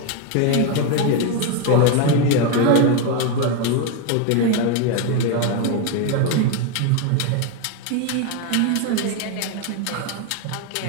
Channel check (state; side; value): different; both; correlation 0.02